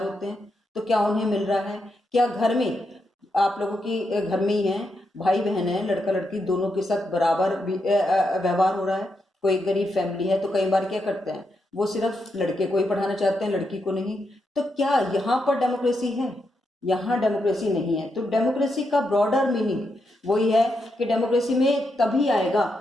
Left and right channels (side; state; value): both; normal; correlation 0.83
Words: होते हैं, तो क्या उन्हें मिल रहा है। क्या घर में आप लोगों की घर में ही है, भाई बहन है, लड़का लड़की दोनों के साथ बराबर व्यवहार हो रहा है। कोई गरीब फैमिली है तो कई बार क्या करते हैं, वो सिर्फ लड़के को ही पढ़ाना चाहते हैं, लड़की को नहीं। तो क्या यहाँ पर डेमोक्रेसी है? यहाँ डेमोक्रेसी नहीं है। तो डेमोक्रेसी का ब्रॉडर मीनिंग वही है कि डेमोक्रेसी में तभी आएगा